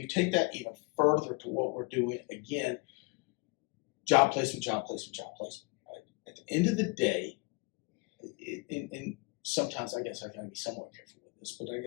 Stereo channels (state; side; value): quieter; right; 28.3 dB